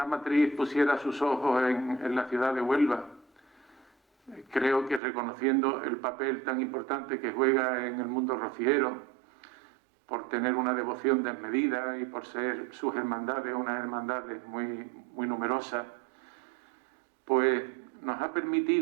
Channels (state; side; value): drops out; left; at 5.0 s